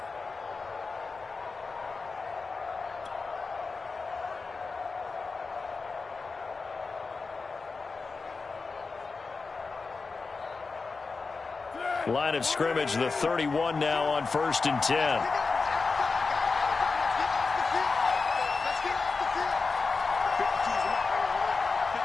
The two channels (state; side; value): quieter; right; 4.3 dB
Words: Line of scrimmage, the 31 now on 1st and 10.